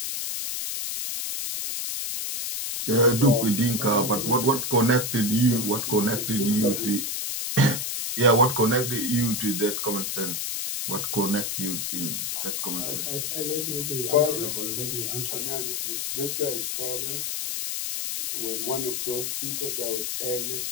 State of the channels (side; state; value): left; noise; hiss, 2 dB below the sound